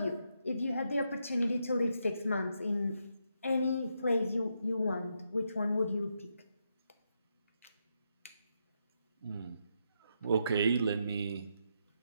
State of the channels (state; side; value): inverted; both; correlation -0.81